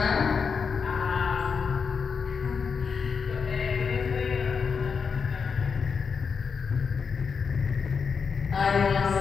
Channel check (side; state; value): right; quieter; 5.8 dB